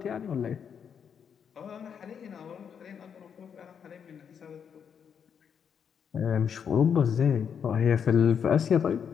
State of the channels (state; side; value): quieter; right; 7.4 dB